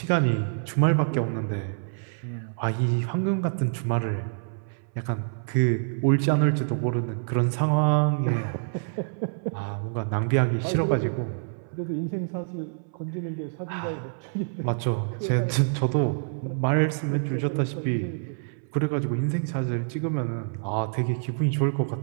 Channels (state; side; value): silent; left; 60 dB below the other